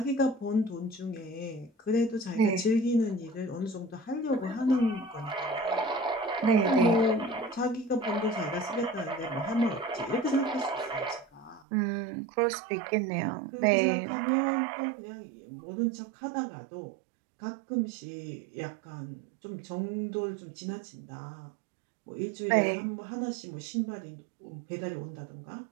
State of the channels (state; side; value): drops out; left; at 11.7 s